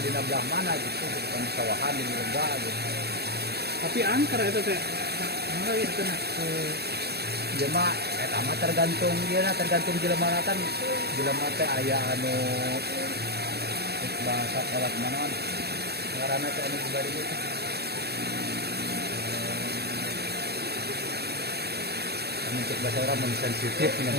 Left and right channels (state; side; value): late; left; 0.47 ms